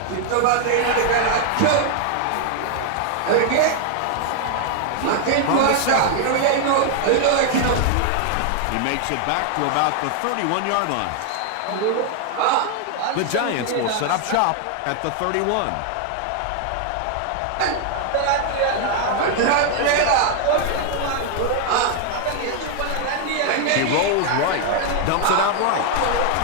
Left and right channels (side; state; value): both; different; correlation 0.00